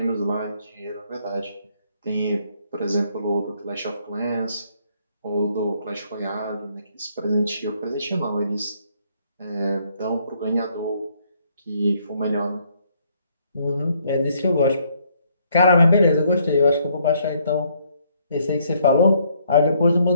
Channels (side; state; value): both; inverted; correlation -0.68